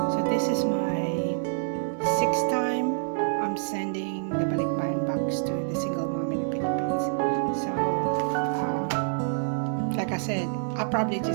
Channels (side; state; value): left; silent; digital silence